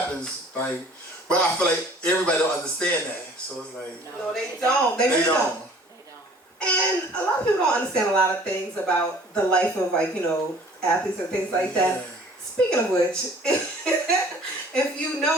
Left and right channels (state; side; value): normal; both; correlation 0.52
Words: like, but I feel like everybody don't understand that, so it's like. No, they don't. They really don't. And a lot of people don't understand a lot of things about the life of, like, athletes and things like that. Speaking of which, if you